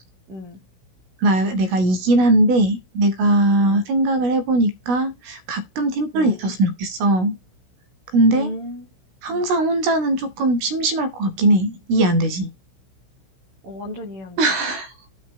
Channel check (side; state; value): left; late; 16 ms